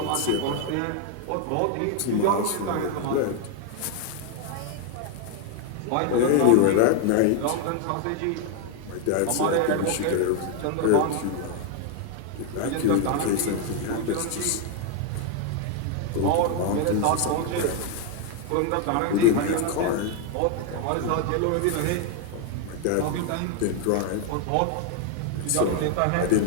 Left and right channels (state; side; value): different; both; correlation 0.01